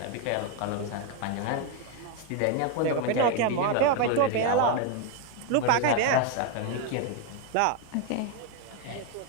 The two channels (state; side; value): different; both; correlation 0.01